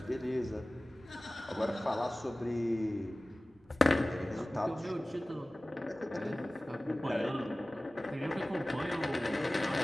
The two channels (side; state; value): both; normal; correlation 0.98